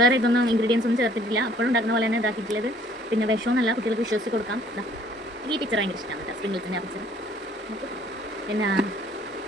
ഇതൊന്നും ഇൻഗ്രീഡിയൻസ് ഒന്നും ചേർത്തിട്ടില്ല. അപ്പോഴും ഉണ്ടാക്കുന്ന പോലെ തന്നെ ഇതാക്കിയിട്ടുള്ളത്. പിന്നെ വിഷമൊന്നുമല്ല, കുട്ടികൾക്ക് വിശ്വസിച്ച് കൊടുക്കാം. ഈ പിക്ചർ ഭയങ്കര ഇഷ്ടമാണ് കേട്ടോ, സ്പ്രിങ്കിൾസിൻ്റെ ആ പിക്ചർ. പിന്നെ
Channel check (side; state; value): both; normal; correlation 0.58